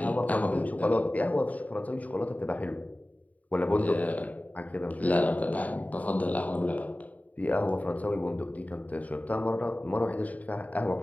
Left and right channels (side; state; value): right; late; 0.072 ms